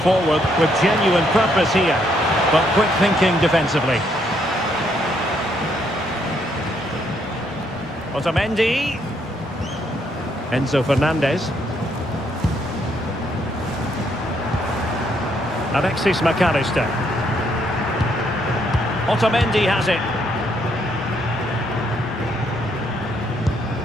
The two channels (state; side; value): normal; both; correlation 0.72